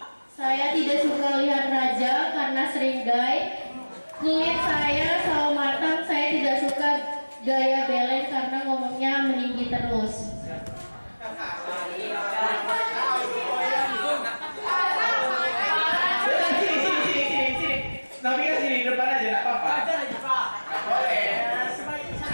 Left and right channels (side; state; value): both; inverted; correlation -1.00